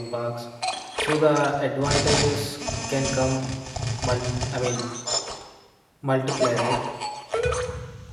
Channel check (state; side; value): identical; both; correlation 1.00